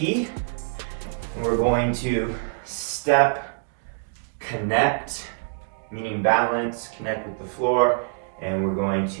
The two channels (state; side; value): silent; left; 62 dB below the other